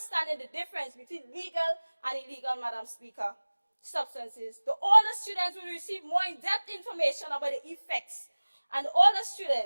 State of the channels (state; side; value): inverted; both; correlation -1.00